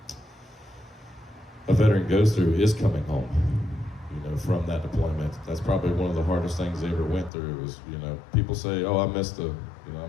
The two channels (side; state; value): right; drops out; at 7.3 s